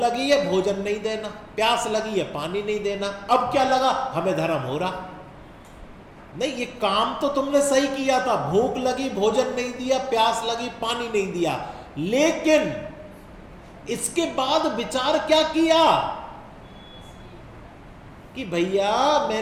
है, भोजन नहीं देना, प्यास लगी है, पानी नहीं देना। अब क्या लगा? हमें धर्म हो रहा। नहीं, ये काम तो तुमने सही किया था। भूख लगी, भोजन नहीं दिया, प्यास लगी, पानी नहीं दिया। लेकिन इसके बाद विचार क्या किया कि भैया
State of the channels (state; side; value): identical; both; correlation 1.00